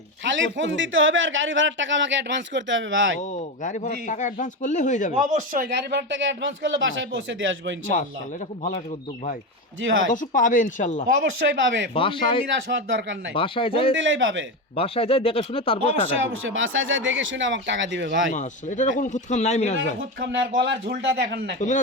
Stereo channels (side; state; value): both; normal; correlation 0.16